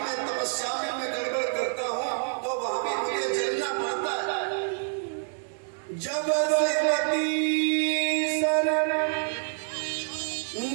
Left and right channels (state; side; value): silent; left; 60 dB below the other